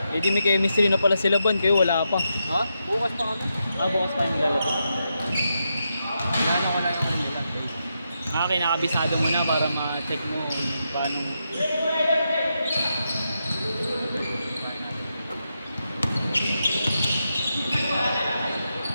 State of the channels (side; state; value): both; inverted; correlation -0.85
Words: Eh di may chemistry na pala sila Bon, kayo wala pa. Ha? Bukas pa kami. Bukas pa yung lalabas. Gano'n ko lang yung remittance day. Kinakabisado mo na para ma-check mo kung paano.